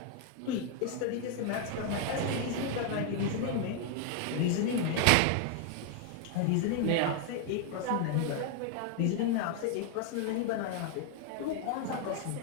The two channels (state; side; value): different; both; correlation 0.00